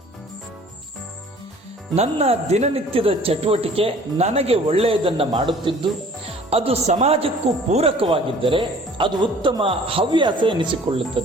ನನ್ನ ದಿನನಿತ್ಯದ ಚಟುವಟಿಕೆ ನನಗೆ ಒಳ್ಳೆಯದನ್ನು ಮಾಡುತ್ತಿದ್ದು ಅದು ಸಮಾಜಕ್ಕೂ ಪೂರಕವಾಗಿದ್ದರೆ ಅದು ಉತ್ತಮ ಹವ್ಯಾಸ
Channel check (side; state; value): both; normal; correlation 0.51